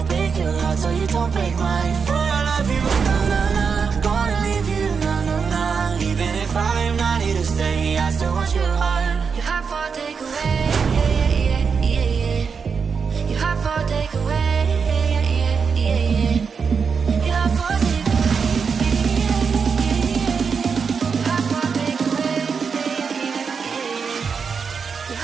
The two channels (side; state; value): left; quieter; 5.8 dB